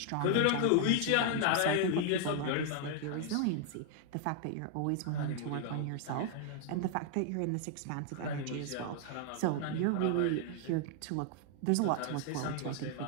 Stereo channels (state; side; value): different; both; correlation 0.00